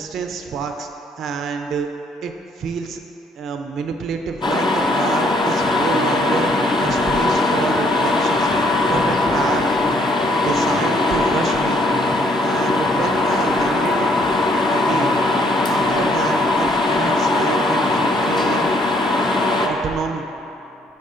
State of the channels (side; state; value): both; normal; correlation 0.66